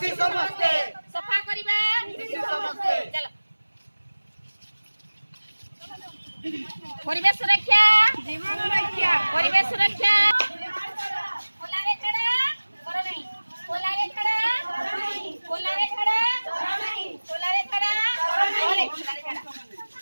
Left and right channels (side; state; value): both; inverted; correlation -1.00